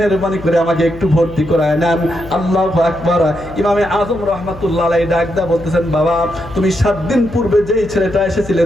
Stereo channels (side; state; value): left; noise; hum, 16 dB below the sound